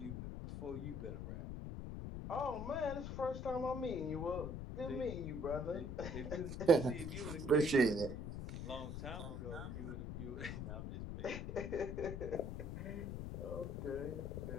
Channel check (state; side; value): noise; left; rumble, 5 dB below the sound